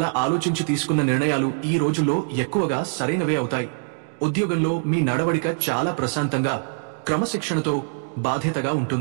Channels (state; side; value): silent; left; digital silence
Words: ఆలోచించి తీసుకున్న నిర్ణయాలు ఈ రోజుల్లో ఎక్కువగా సరైనవే అవుతాయి. ఉద్యోగంలో మీ నడవడిక చాలా ప్రశాంతంగా, క్రమశిక్షణతో, బాధ్యతగా